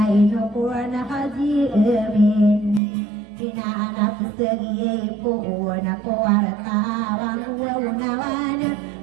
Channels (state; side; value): drops out; left; at 2.8 s